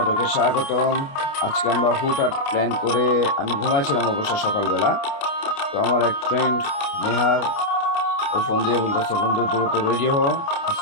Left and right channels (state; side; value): late; right; 29 ms